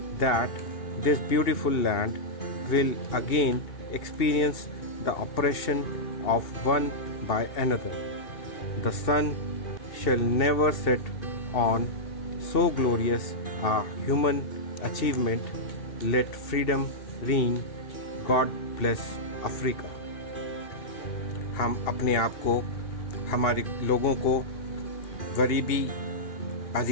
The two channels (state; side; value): late; right; 2.8 ms